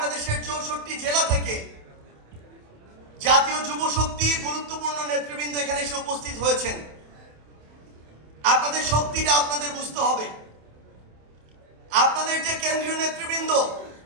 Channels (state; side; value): late; left; 27 ms